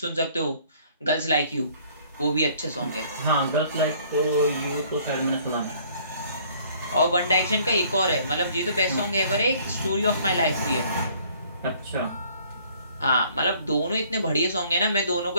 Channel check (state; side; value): inverted; both; correlation -0.58